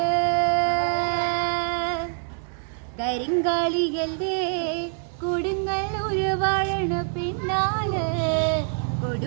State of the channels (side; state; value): left; silent; 62 dB below the other